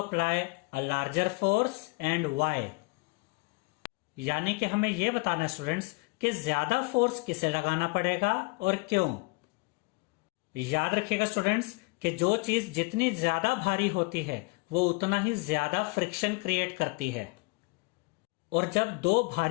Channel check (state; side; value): quieter; right; 28.1 dB